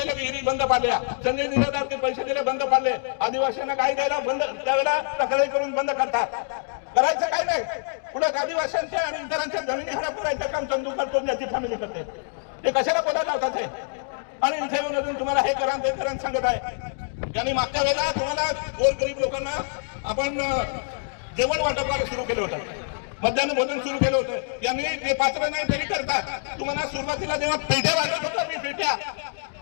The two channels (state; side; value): silent; right; digital silence